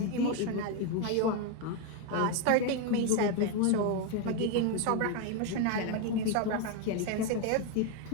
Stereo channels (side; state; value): both; different; correlation 0.01